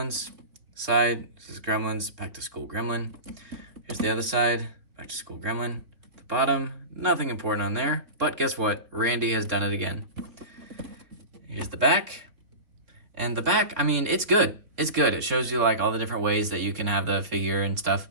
Side says Gremlins, Back to School Gremlin. Here's the other side, Back to School Gremlin. The bottom, nothing important on there, but guess what? Randy has done it again. Here's the back. And the back, I mean, it's good. It's good. It shows you like all the different ways that you can have the figure and stuff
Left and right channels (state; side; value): late; left; 3.2 ms